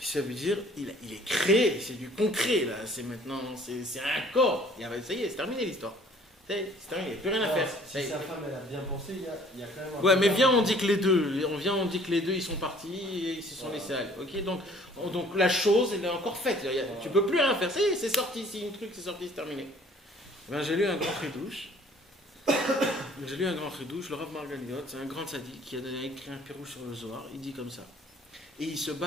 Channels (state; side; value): normal; both; correlation 0.55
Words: veut dire il est créé, c'est du concret là, c'est maintenant, c'est un corps. Ça y est, c'est terminé l'histoire. C'est terminé, il n'y a plus rien à faire. Si sa femme elle a bien pensé, il y a quand même un ouais, mais viens, on dit que les deux, ils sont partis et ils se sont laissés aller. Ok, donc la chose, elle est encore faite. Tu peux plus rien faire. Ça y est, c'est sorti. Si un truc c'est sorti, c'est terminé. Ben, j'ai lu un grand chidouche. Le Rav Margaliot, c'est un grand sadique qui a écrit un pirouche sur le Zohar. Il dit comme ça. Et il se